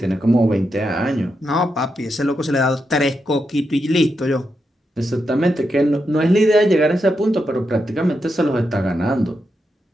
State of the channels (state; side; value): normal; both; correlation 0.85